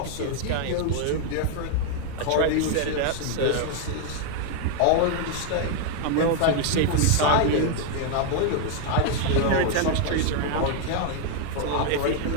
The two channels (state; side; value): different; both; correlation 0.00